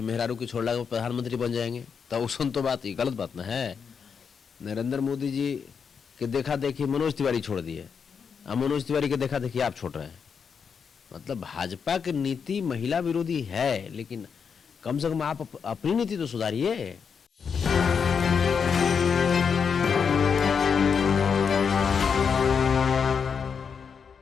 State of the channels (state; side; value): quieter; right; 6.4 dB